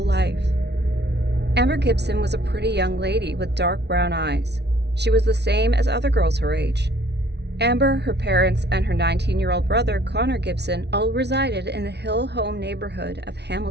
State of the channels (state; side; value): late; left; 0.50 ms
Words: life. Amber Gibson was a pretty young lady with dark brown eyes. She was the same as other girls her age. Amber, her parents, and her 19-year-old brother, Connor Gibson, all resided in the Hill Home neighborhood of